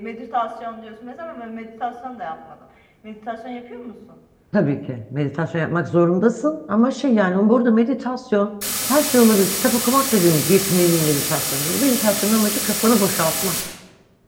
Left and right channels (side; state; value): both; identical; correlation 1.00